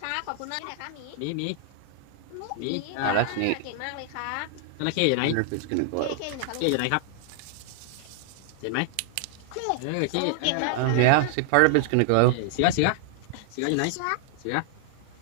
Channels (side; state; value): both; different; correlation -0.01